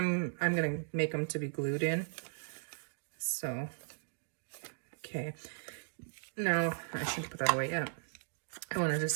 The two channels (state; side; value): silent; left; digital silence